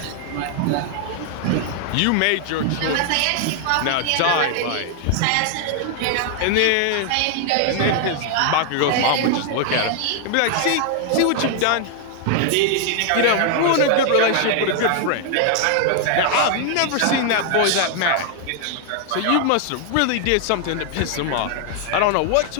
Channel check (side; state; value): both; different; correlation 0.00